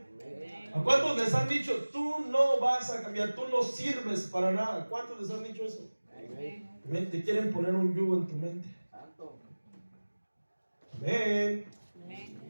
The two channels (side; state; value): both; inverted; correlation -1.00